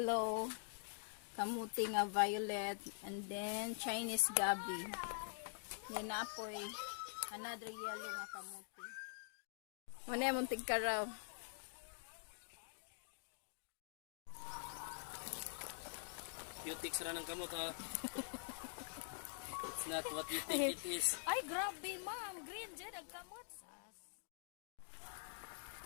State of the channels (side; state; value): right; silent; digital silence